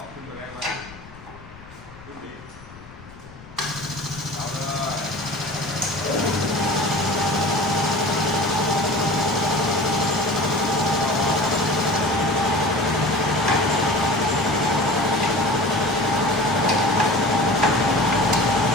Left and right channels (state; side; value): noise; left; rumble, 20 dB below the sound